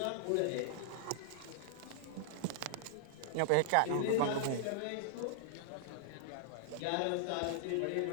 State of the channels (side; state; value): both; different; correlation -0.01